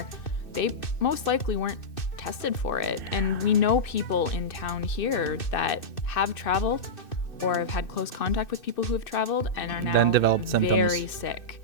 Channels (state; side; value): late; right; 2.6 ms